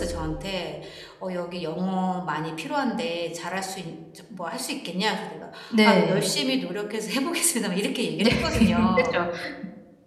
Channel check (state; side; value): identical; both; correlation 1.00